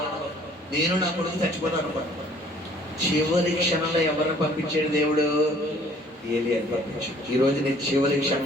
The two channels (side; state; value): both; normal; correlation 0.56